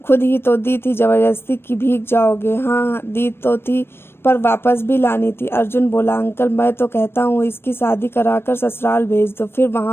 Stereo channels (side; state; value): right; late; 0.12 ms